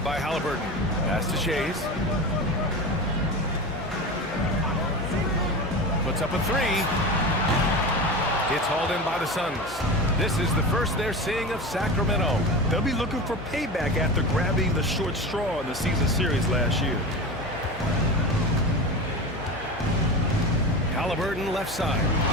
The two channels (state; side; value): noise; left; hum, 18 dB below the sound